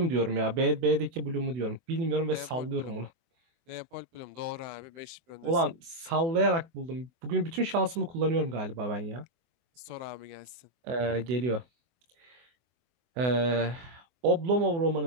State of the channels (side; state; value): left; late; 24 ms